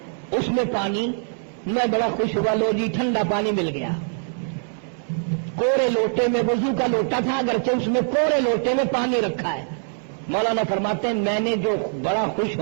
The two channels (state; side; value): silent; left; digital silence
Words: اس میں پانی، میں بڑا خوش ہوا، لو جی ٹھنڈا پانی مل گیا۔ کورے لوٹے میں، وضو کا لوٹا تھا اگرچہ اس میں کورے لوٹے میں پانی رکھا ہے۔ مولانا فرماتے ہیں میں نے جو بڑا خوش